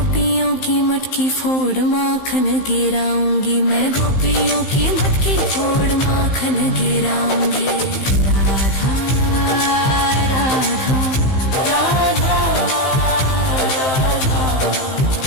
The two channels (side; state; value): right; late; 15 ms